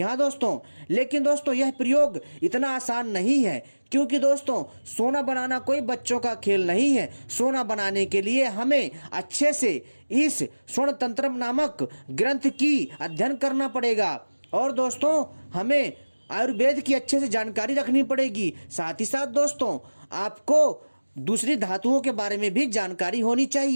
हाँ दोस्तों, लेकिन दोस्तों यह प्रयोग इतना आसान नहीं है, क्योंकि दोस्तों सोना बनाना कोई बच्चों का खेल नहीं है। सोना बनाने के लिए हमें अच्छे से इस स्वर्ण तंत्र नामक ग्रंथ की अध्ययन करना पड़ेगा और दोस्तों हमें आयुर्वेद की अच्छे से जानकारी रखनी पड़ेगी। साथ ही साथ दोस्तों आपको दूसरी धातुओं के बारे में भी जानकारी होनी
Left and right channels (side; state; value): both; inverted; correlation -1.00